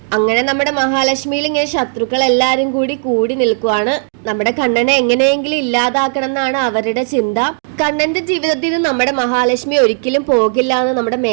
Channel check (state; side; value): silent; left; digital silence